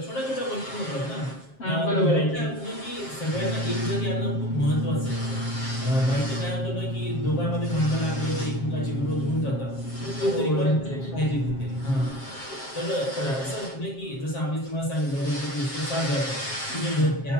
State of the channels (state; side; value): late; right; 7.5 ms